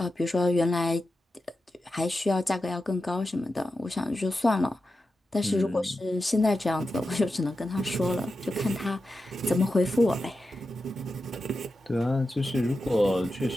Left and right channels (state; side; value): normal; both; correlation 0.91